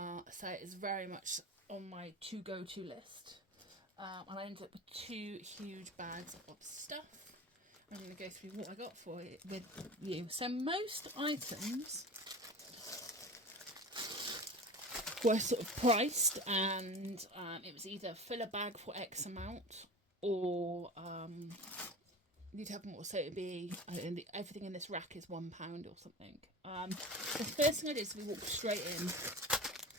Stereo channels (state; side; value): normal; both; correlation 0.33